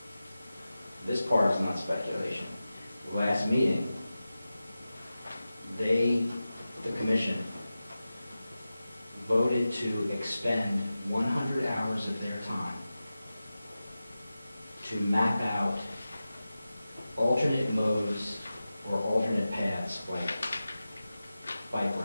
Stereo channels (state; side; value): inverted; both; correlation -0.94